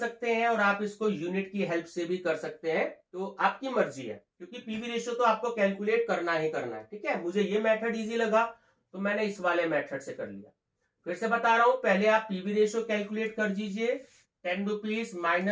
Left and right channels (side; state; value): both; identical; correlation 1.00